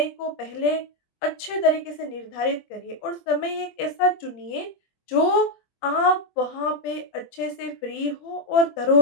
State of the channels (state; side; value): late; right; 24 ms